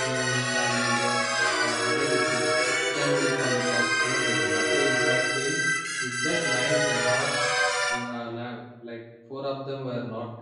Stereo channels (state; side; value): identical; both; correlation 1.00